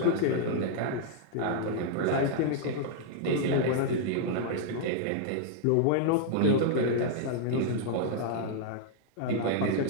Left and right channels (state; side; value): different; both; correlation -0.01